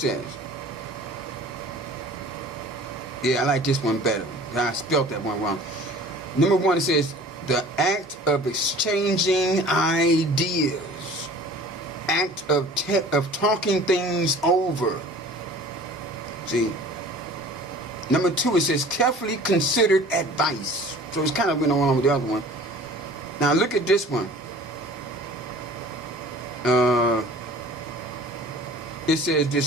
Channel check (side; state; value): both; normal; correlation 0.45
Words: Yeah, I like this one better. I spelled that one wrong. Number 1, it says, the act of exchanging ideas. Act of talking things over. See? Number 2, it says carefully considered advice. So it's kind of been along with the other one. Now look at this one. It says